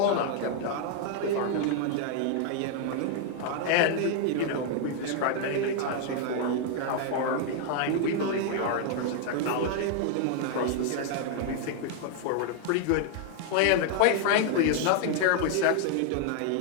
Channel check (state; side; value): different; both; correlation 0.00